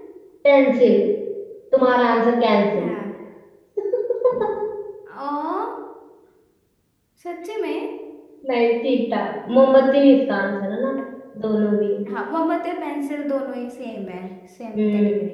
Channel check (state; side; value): identical; both; correlation 1.00